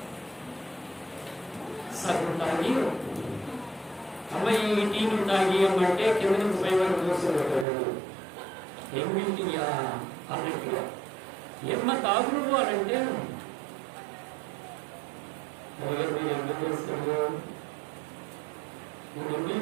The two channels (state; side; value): drops out; left; at 7.7 s